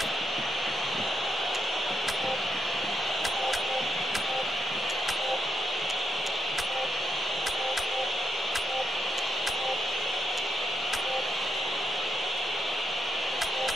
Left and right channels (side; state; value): both; normal; correlation 0.82